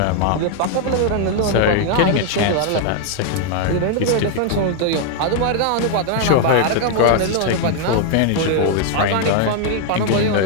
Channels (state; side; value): different; both; correlation 0.00